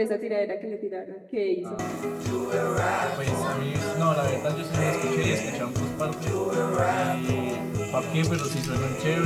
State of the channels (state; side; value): identical; both; correlation 1.00